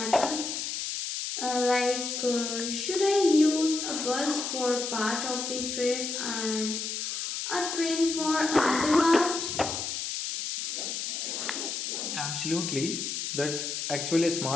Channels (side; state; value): left; noise; hiss, 3 dB below the sound